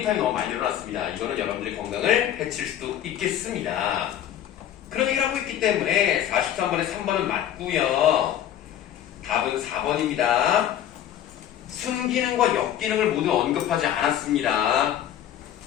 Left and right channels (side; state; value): right; quieter; 10.9 dB